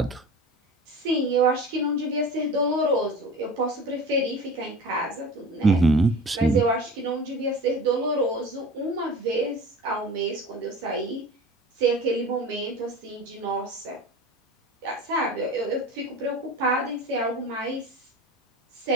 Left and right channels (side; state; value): both; normal; correlation 0.36